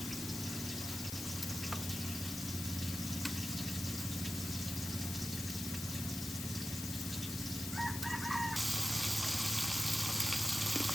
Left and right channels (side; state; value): left; noise; hiss, 6 dB below the sound